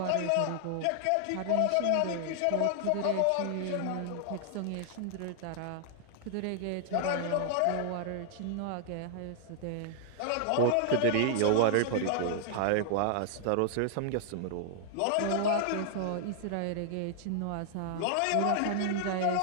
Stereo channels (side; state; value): both; different; correlation -0.01